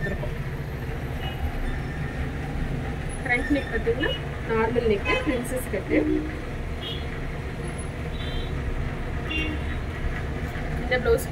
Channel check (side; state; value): both; identical; correlation 1.00